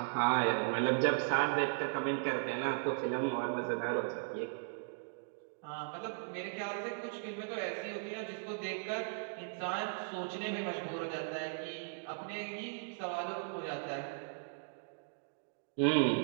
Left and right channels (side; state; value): left; silent; digital silence